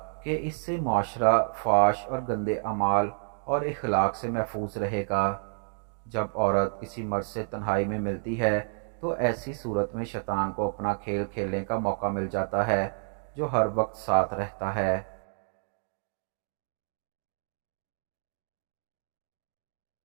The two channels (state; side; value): silent; left; digital silence